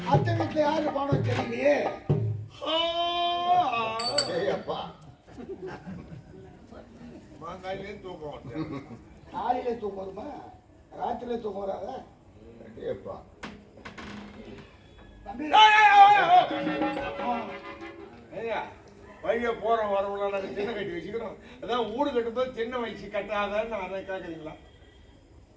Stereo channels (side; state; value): both; identical; correlation 1.00